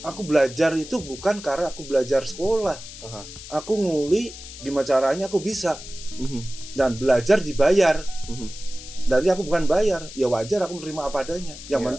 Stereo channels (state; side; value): noise; left; hiss, 14 dB below the sound